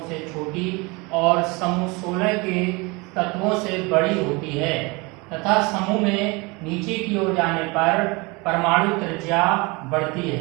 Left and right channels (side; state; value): left; quieter; 26.6 dB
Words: से छोटी और समूह 16 के तत्वों से बड़ी होती है तथा समूह में नीचे की ओर जाने पर परमाणु त्रिज्या बढ़ती